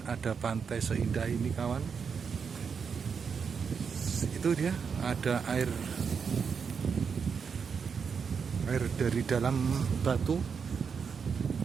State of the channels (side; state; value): left; quieter; 6.2 dB